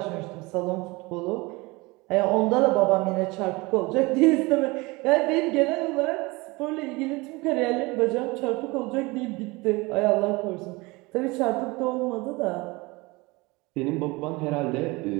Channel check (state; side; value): quieter; left; 23.9 dB